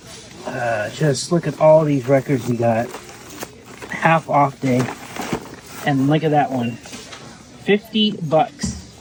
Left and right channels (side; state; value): both; identical; correlation 1.00